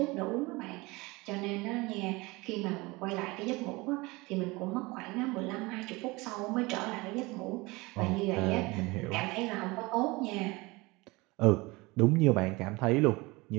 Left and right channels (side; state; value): left; quieter; 23.5 dB